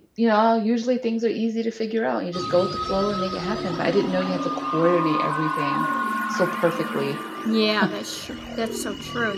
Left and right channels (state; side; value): identical; both; correlation 1.00